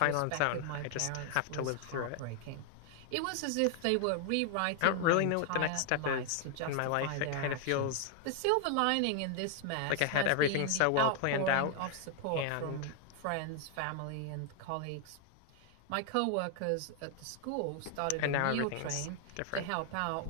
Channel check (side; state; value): both; different; correlation 0.00